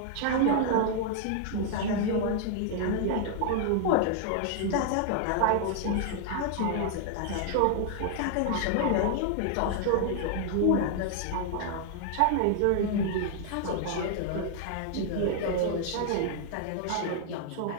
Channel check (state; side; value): different; both; correlation 0.00